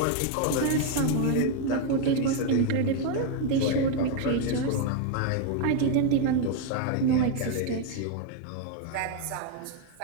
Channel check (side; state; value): both; different; correlation 0.01